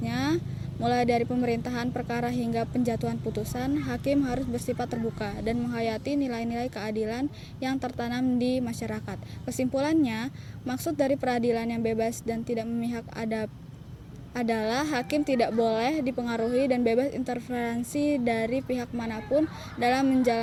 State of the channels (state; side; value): identical; both; correlation 1.00